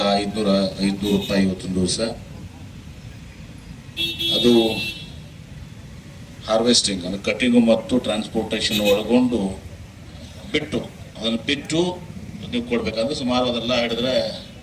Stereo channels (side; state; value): both; identical; correlation 1.00